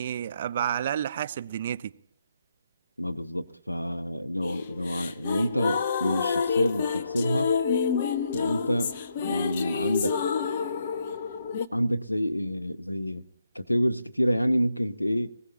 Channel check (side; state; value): both; inverted; correlation -0.80